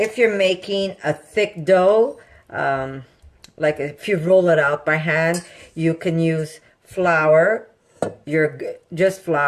you're making a thick dough, like if you roll it out by hand, you can use flour. Just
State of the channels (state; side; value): identical; both; correlation 1.00